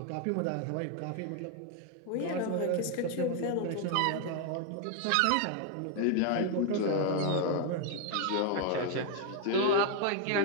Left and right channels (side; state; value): both; different; correlation 0.00